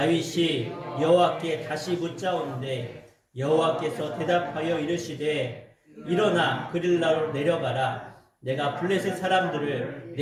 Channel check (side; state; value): both; identical; correlation 1.00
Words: 여호와께 다시 묻자온데 여호와께서 대답하여 이르시되 일어나 그릴라로 내려가라. 내가 블레셋 사람들을